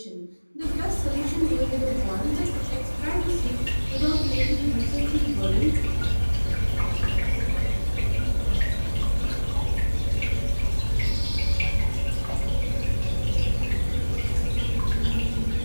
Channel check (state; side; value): inverted; both; correlation -1.00